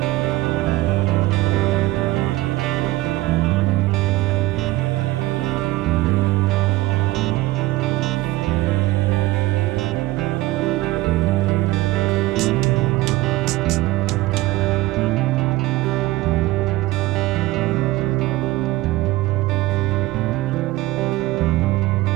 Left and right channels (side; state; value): left; quieter; 18.4 dB